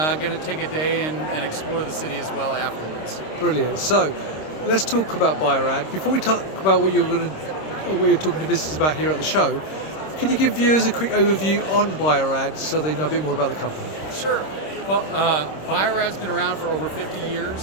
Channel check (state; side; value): late; right; 26 ms